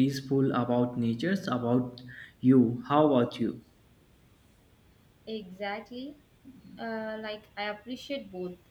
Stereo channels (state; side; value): identical; both; correlation 1.00